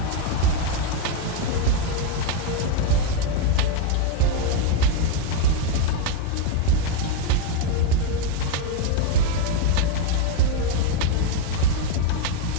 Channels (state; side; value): different; both; correlation 0.02